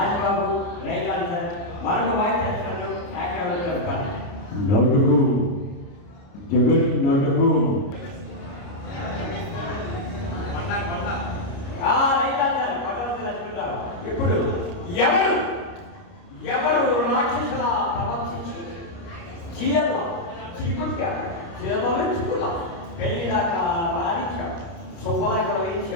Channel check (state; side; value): late; right; 29 ms